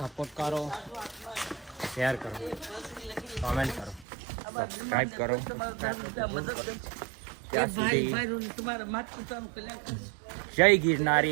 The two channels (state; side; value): drops out; left; at 4.0 s